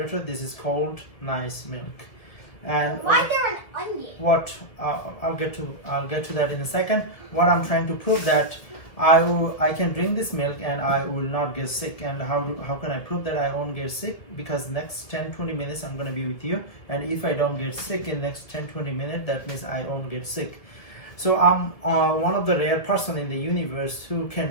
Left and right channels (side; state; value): right; late; 2.0 ms